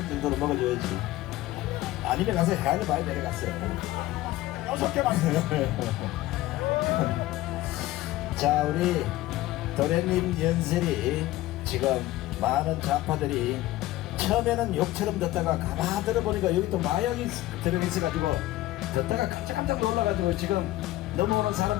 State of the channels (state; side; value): quieter; right; 16.4 dB